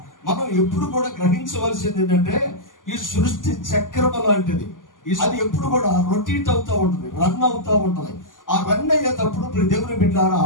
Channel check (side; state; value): right; late; 0.88 ms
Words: మనం ఎప్పుడు కూడా గ్రహించవలసింది ఏంటంటే ఈ సృష్టి చక్రం లాంటిది. అది ఎప్పుడు కూడా రొటేట్ అవుతూ ఉంటుంది, రన్ అవుతూ ఉంటుంది. ఆ రన్ అయ్యేటప్పుడు దేవుని బిడ్డలారా,